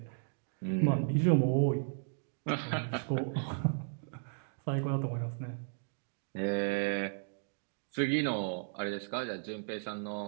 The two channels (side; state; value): left; silent; digital silence